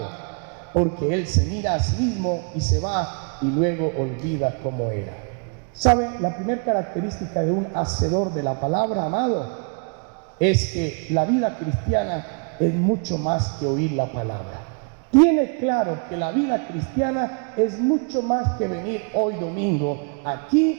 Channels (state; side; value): quieter; left; 38.1 dB